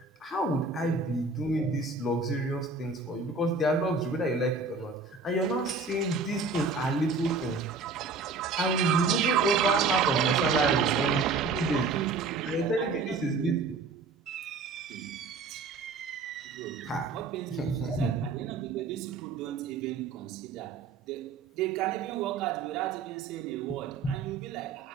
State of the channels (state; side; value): quieter; left; 4.1 dB